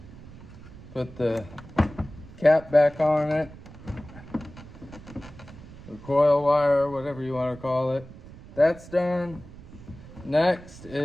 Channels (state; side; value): noise; right; rumble, 17 dB below the sound